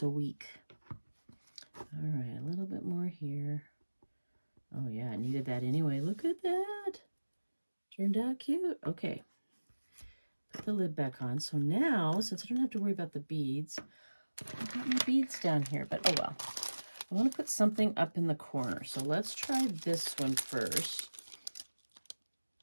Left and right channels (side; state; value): both; inverted; correlation -1.00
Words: weak. All right, a little bit more here. Oh yeah, I needed that anyway. Look at that. Turned out cute. Okay. Put the lid back on. So now, since I don't have to worry about the beads, I've got my beads down here, but oh well. I want to put something up in the corner. So let's try this one first.